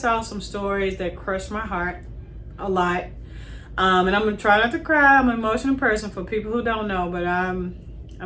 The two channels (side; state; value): both; identical; correlation 1.00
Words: some stories that crushed my heart a lot. And I'm gonna try not to cry. I'm an emotional person for people who don't know, but I'm